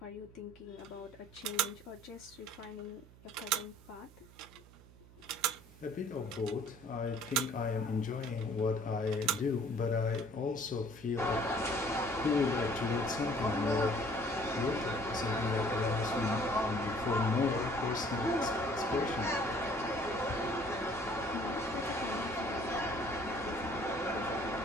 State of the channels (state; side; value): noise; right; hum, 22 dB below the sound